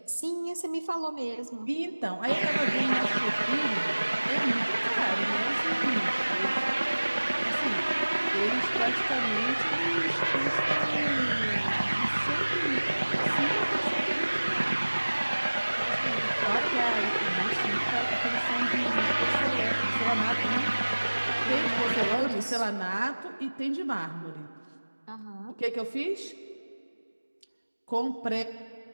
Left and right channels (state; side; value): inverted; both; correlation -1.00